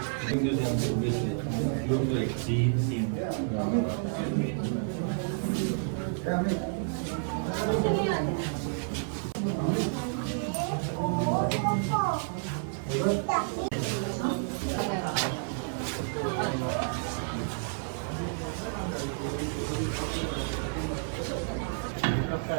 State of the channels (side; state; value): left; silent; 58 dB below the other